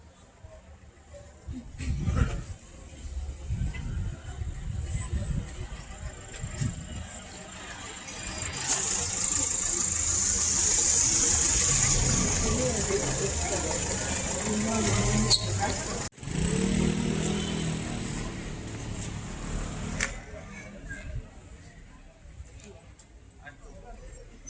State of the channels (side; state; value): both; identical; correlation 1.00